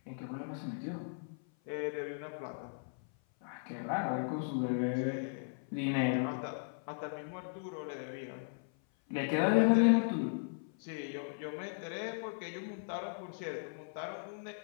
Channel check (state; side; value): silent; right; 53 dB below the other